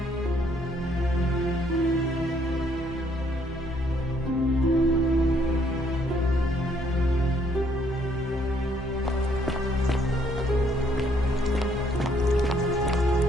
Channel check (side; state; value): both; normal; correlation 0.68